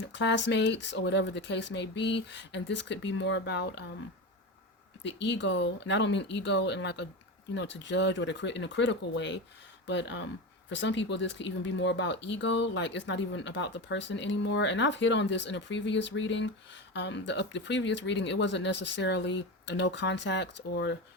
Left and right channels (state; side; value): normal; both; correlation 0.22